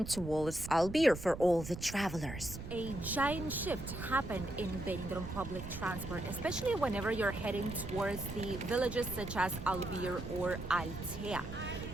towards Albir for all the travelers. A giant shift happened in Benidorm public transport, especially whenever you're heading towards the villages such as Albir or Altea.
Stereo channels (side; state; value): right; noise; rumble, 9 dB below the sound